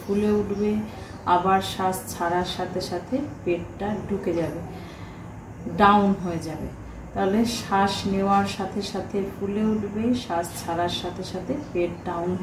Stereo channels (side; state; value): both; identical; correlation 1.00